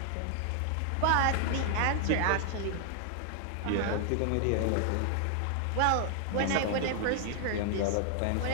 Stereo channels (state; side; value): different; both; correlation 0.00